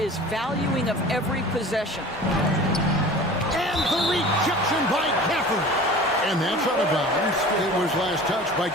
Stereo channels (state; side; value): normal; both; correlation 0.40